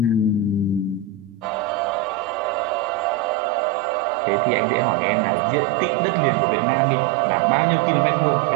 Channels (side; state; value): left; drops out; at 3.4 s